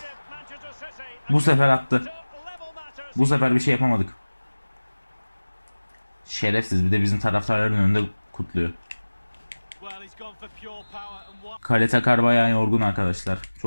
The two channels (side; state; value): both; inverted; correlation -1.00